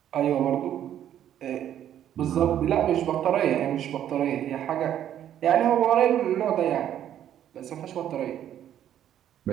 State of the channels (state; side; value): quieter; left; 10.7 dB